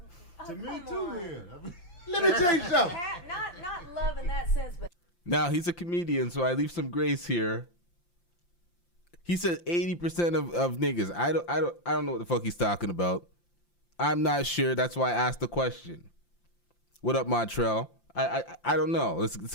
To me too, man. Let me tell you something. Not love in that sense, but. Now, he's a comedian, so I leave some grace here. He said 80% of niggas. I don't know what the fuck he's talking about. I'm not sure. That's why I asked the question. What up, Montreal? I don't know. Let's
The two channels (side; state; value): right; late; 5.8 ms